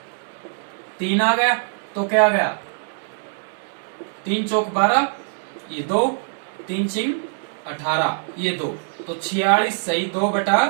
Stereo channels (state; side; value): silent; left; 61 dB below the other